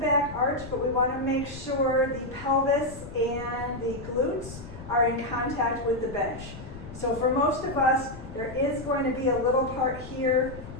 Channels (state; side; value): noise; left; rumble, 14 dB below the sound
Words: arch, but we want to make sure the pelvis and the glutes are in contact with the bench. So for most of us, there is going to be a little part here,